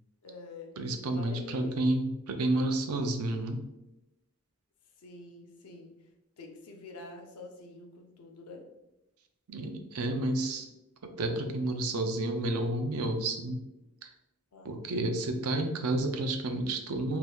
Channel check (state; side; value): normal; both; correlation 0.57